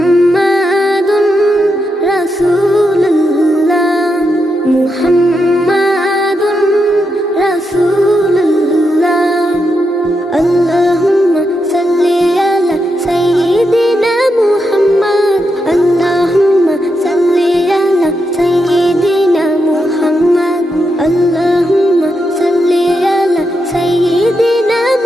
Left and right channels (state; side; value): normal; both; correlation 0.84